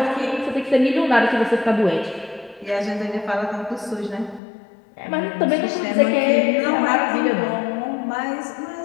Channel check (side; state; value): right; drops out; at 4.4 s